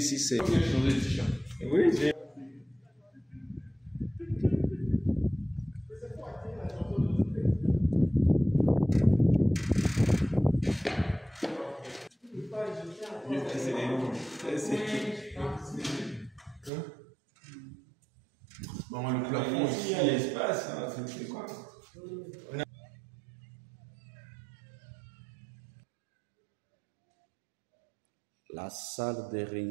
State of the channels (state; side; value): drops out; left; at 16.7 s